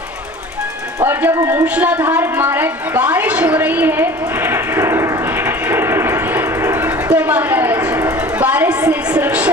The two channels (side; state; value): both; normal; correlation 0.42